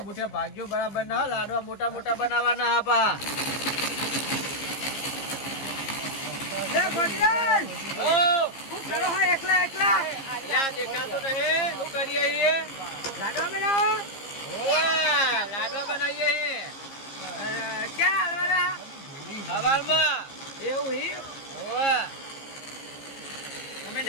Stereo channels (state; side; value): late; right; 15 ms